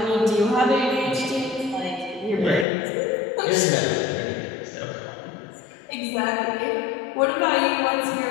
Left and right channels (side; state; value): right; drops out; at 2.7 s